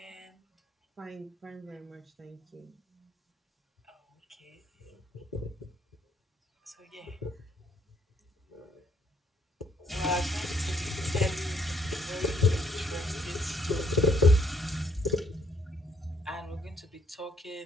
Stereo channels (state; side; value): normal; both; correlation 0.70